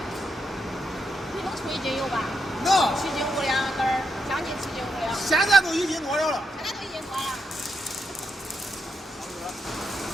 你能出1斤油吧？能。7斤5两根儿，将近7斤5两。现在都1斤多了。现在都1斤多了。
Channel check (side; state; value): both; normal; correlation 0.82